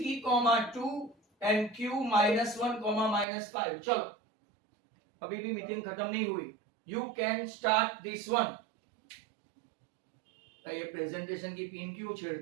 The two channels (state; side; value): drops out; left; at 3.2 s